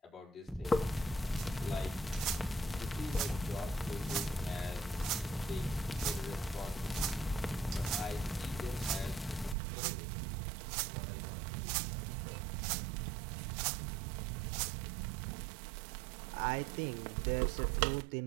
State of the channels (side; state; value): left; drops out; at 9.6 s